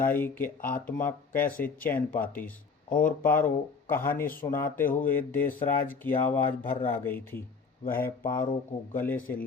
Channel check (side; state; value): right; quieter; 5.0 dB